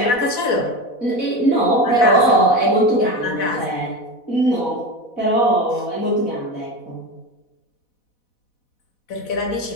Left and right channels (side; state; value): right; late; 4.1 ms